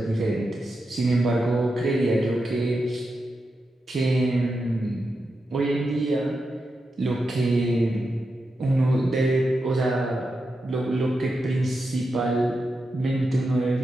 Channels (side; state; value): both; normal; correlation 0.88